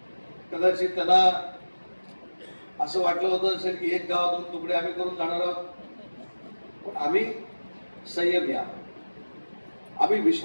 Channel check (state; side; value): inverted; both; correlation -1.00